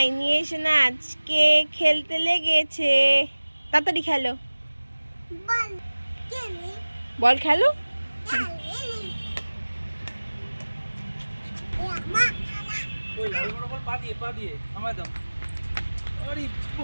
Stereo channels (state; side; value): inverted; both; correlation -1.00